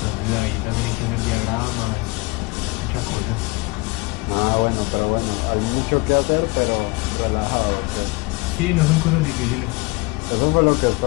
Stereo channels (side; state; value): right; quieter; 25.2 dB